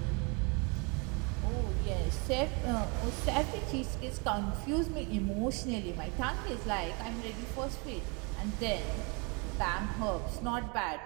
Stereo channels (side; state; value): left; quieter; 31.8 dB